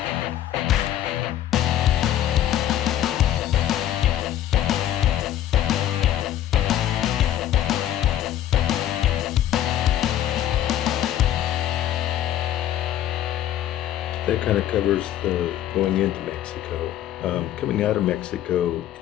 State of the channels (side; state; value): right; quieter; 11.9 dB